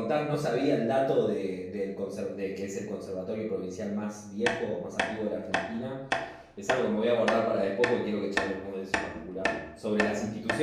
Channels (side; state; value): both; identical; correlation 1.00